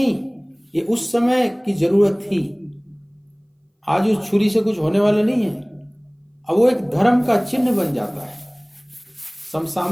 ये उस समय की जरूरत थी। आज उस छुरी से कुछ होने वाला नहीं है, अब वो एक धर्म का चिन्ह बन जाता है।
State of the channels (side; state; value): both; identical; correlation 1.00